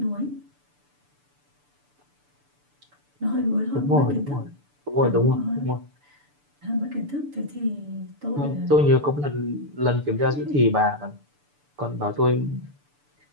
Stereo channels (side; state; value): left; late; 6.9 ms